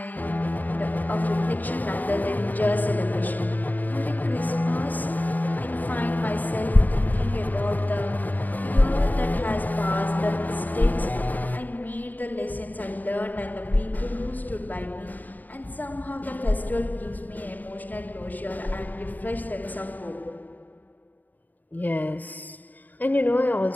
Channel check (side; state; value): right; late; 0.084 ms